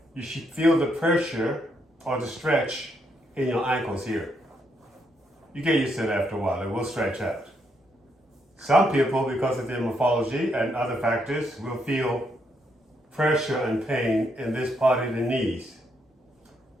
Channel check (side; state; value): both; normal; correlation 0.77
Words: you should feel the pressure or the stretch in your ankles here. You get used to it after a while, it will stretch out. Some people, because of their morphology and other factors, will feel pressure and pain in this part of the knees.